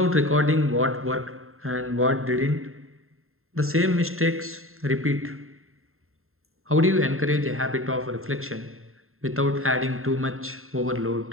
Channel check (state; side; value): late; left; 0.61 ms